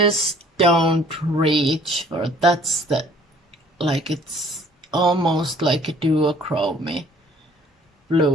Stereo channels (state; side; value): normal; both; correlation 0.56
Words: don't reach for, that's the, like, it's almost like a duochrome